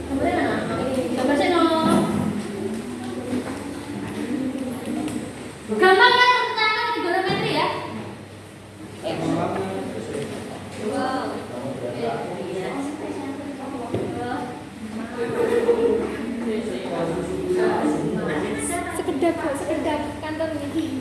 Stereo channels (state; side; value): identical; both; correlation 1.00